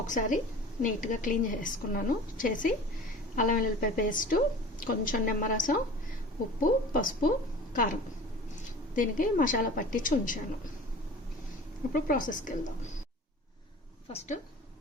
నీట్గా క్లీన్ చేసుకున్నాను. చేసి అల్లం వెల్లుల్లిపాయ పేస్టు, కొంచెం నిమ్మరసం, ఉప్పు, పసుపు, కారం దీనికి మసాలా పట్టించి ఉంచాను. ఇప్పుడు ప్రాసెస్కి వెళ్దాం. ఫస్ట్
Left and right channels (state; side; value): normal; both; correlation 0.40